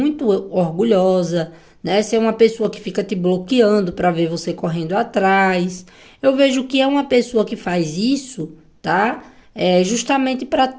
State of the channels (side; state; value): both; identical; correlation 1.00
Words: orgulhosa, né? Se é uma pessoa que fica te bloqueando para ver você correndo atrás, eu vejo que é uma pessoa que faz isso, tá? Justamente para